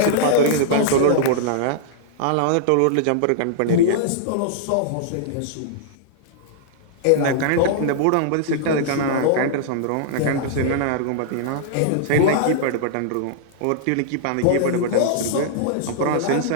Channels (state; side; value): different; both; correlation -0.01